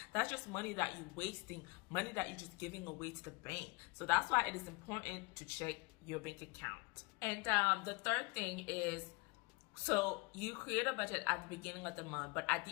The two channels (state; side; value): quieter; right; 27.1 dB